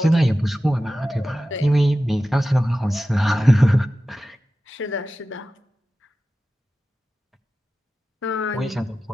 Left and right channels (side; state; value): both; normal; correlation 0.94